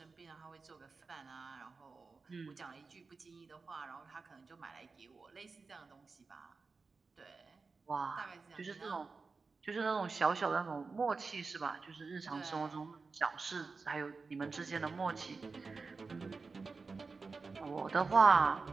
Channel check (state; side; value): quieter; left; 4.4 dB